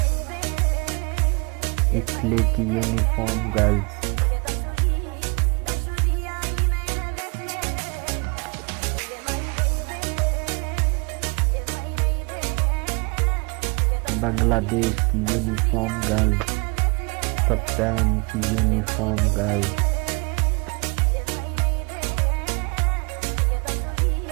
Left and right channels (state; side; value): quieter; left; 31.3 dB